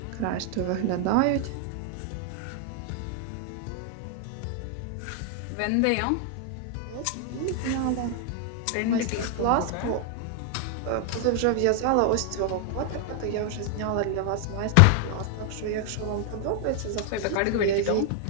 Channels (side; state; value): both; different; correlation 0.00